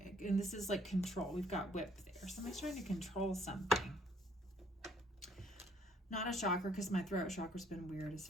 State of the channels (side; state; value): both; normal; correlation 0.62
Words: And this is like control. We've got whip there. Somebody's trying to control something. Not a chakra, because my throat chakra's been weird as